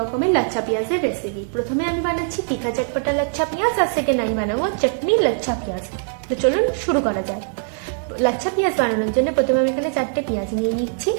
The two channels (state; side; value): silent; left; digital silence